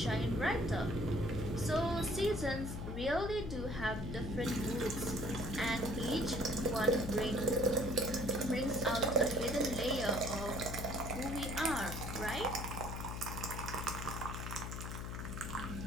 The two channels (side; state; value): left; noise; hum, 5 dB below the sound